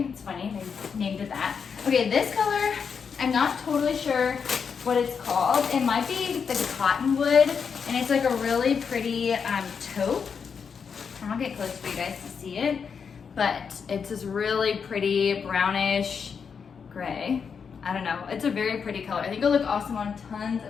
It's funny, they named it that. Okay, this color, I'm not totally sure what it's called. It might be the Cottonwood, and it's like a really pretty taupe. I'll get close for you guys to see it, but it's this really pretty brownish gray. I don't know, it's a very pretty color. I think it'll look awesome on tons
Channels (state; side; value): quieter; right; 6.3 dB